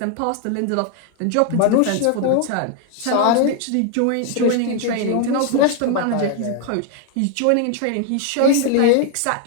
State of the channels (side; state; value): both; different; correlation 0.00